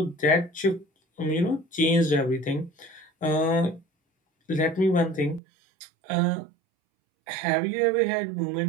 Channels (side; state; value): left; drops out; at 5.4 s